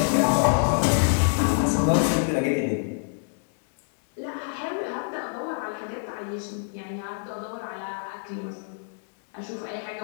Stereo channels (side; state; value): right; silent; 61 dB below the other